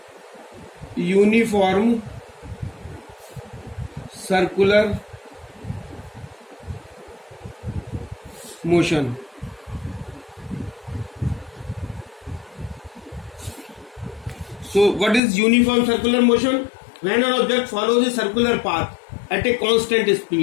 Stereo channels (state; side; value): drops out; right; at 15.2 s